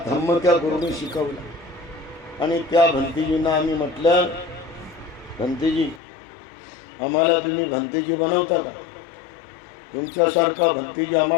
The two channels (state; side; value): drops out; right; at 6.0 s